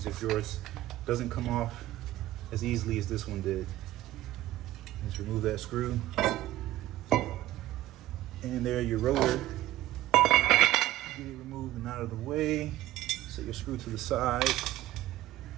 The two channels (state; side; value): quieter; left; 15.0 dB